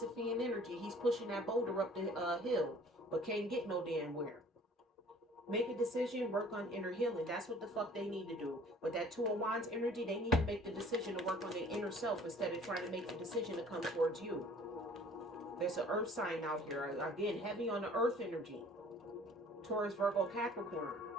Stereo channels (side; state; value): both; normal; correlation 0.52